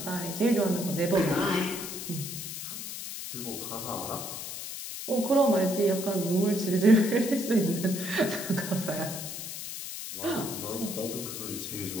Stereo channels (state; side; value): noise; left; hiss, 7 dB below the sound